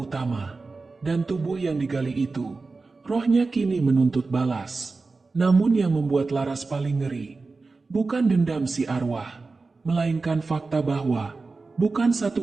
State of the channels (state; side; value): quieter; left; 3.9 dB